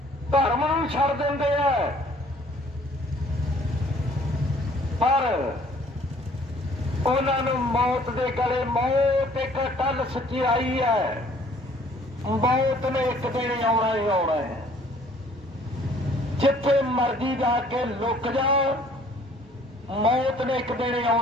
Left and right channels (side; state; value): both; normal; correlation 0.57